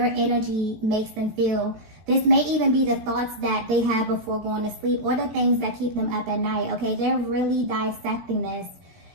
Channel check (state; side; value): late; left; 17 ms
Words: energy makes them feel. This may even be the thoughts that they have before going to sleep or the things that keep them up at night, okay? They're really dissecting this